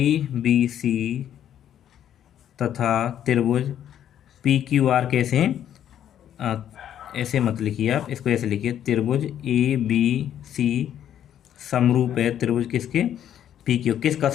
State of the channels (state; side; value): quieter; right; 10.4 dB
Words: बी सी तथा त्रिभुज पी क्यू आर कैसे हैं, ऐसे मत लिखिए आप, इसको ऐसे लिखिए, त्रिभुज ए बी सी समरूप है त्रिभुज किसके, पी क्यू, किस